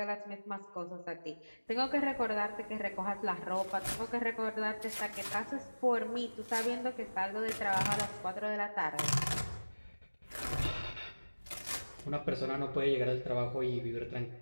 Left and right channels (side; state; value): both; inverted; correlation -1.00